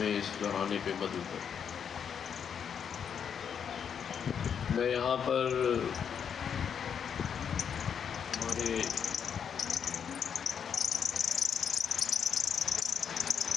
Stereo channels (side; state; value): right; quieter; 7.6 dB